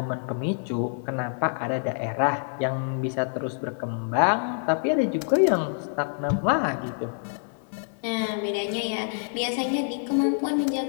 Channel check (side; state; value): right; silent; digital silence